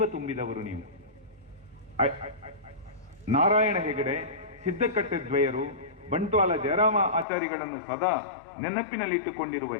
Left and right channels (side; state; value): right; drops out; at 7.2 s